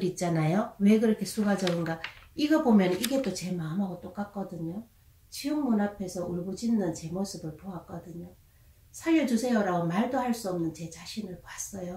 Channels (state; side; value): identical; both; correlation 1.00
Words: 있잖아요. 왜 그렇게 수가 적은가. 이거 보면 이게 또 제 마음하고 똑같거든요. 지옥문 앞에서 울부짖는 제 모습을 보았거든요. 살려주세요라고 말도 할 수 없는 제 자신을